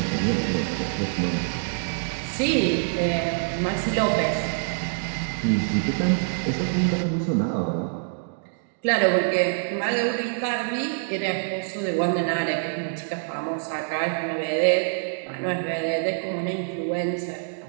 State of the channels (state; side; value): silent; left; digital silence